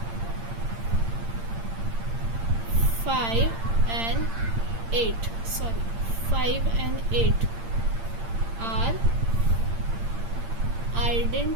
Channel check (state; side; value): late; left; 8.8 ms